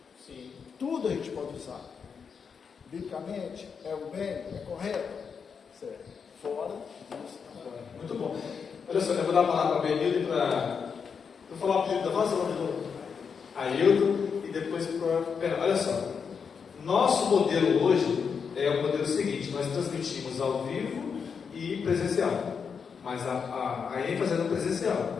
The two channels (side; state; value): right; quieter; 6.2 dB